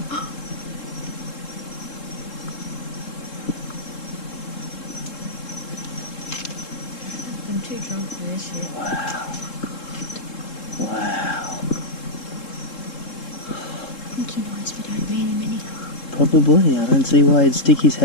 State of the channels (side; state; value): right; late; 3.7 ms